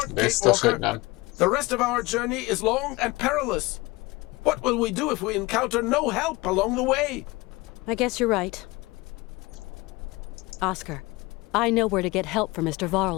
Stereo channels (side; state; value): right; quieter; 22.4 dB